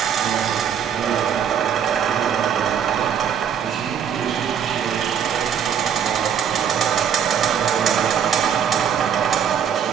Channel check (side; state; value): left; quieter; 8.3 dB